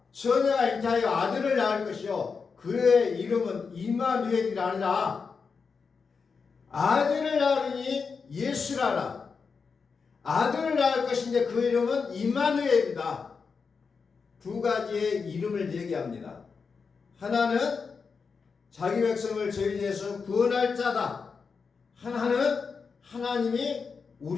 처녀가 잉태하여 아들을 낳을 것이요 그의 이름은 임마누엘이라 하니라. 아들을 낳으니 예수라라. 아들을 낳을 것인데 그 이름은 임마누엘이다. 두 가지의 이름을 얘기합니다. 하나는 자기 백성을 저희 죄에서 구원할 자다. 하나는 하나님이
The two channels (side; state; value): right; quieter; 5.3 dB